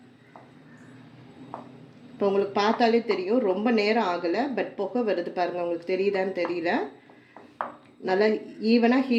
இப்போ உங்களுக்கு பார்த்தாலே தெரியும், ரொம்ப நேரம் ஆகலை, பட் புகை வருது பாருங்கள். உங்களுக்கு தெரியுதான்னு தெரியல. நல்லா ஈவனாக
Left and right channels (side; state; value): both; identical; correlation 1.00